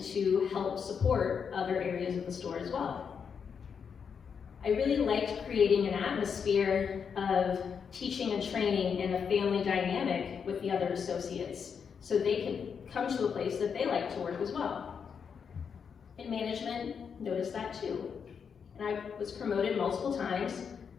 to help support other areas of the store as well. I really liked creating an atmosphere of teaching and training and a family dynamic with the other associates so they could come to a place that they like to work as well. And management noticed that too. And I was promoted multiple times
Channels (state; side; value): quieter; right; 6.6 dB